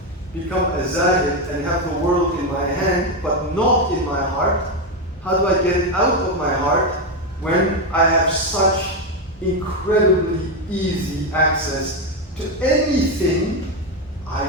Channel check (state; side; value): normal; both; correlation 0.09